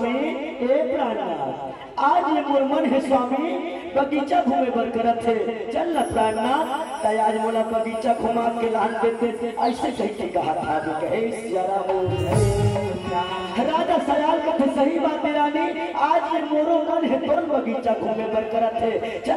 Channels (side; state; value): both; identical; correlation 1.00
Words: ए प्राणनाथ, आज ये मोर मन है स्वामी बगीचा घूमे बर करत है, चल न प्राणनाथ आज मोला बगीचा घुमा के लान देते, ऐसे कह के कहा था कहे राजा सयाल कथे सही बात है रानी, आज ये मोरो मन है तोर बगीचा घूमे बर करत है,